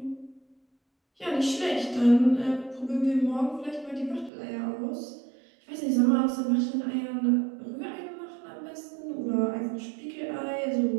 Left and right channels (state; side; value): drops out; left; at 4.3 s